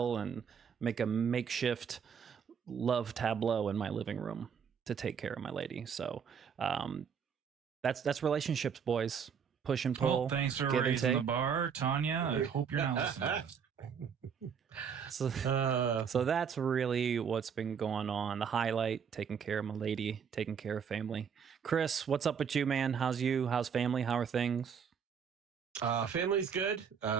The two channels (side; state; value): left; quieter; 7.0 dB